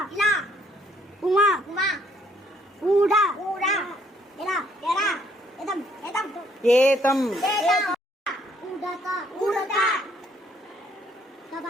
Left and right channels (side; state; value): both; normal; correlation 0.66